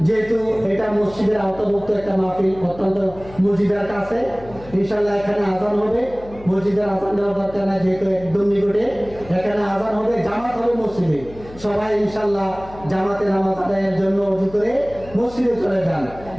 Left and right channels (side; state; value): left; noise; hum, 18 dB below the sound